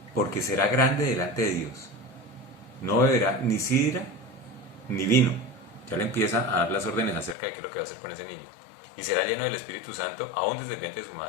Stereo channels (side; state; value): right; drops out; at 7.4 s